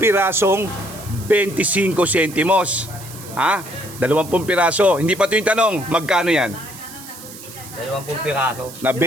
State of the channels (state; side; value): noise; right; hiss, 16 dB below the sound